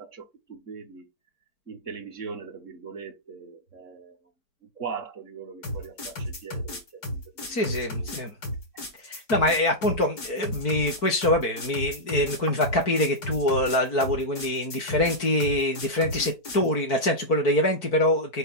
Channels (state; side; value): late; right; 4.6 ms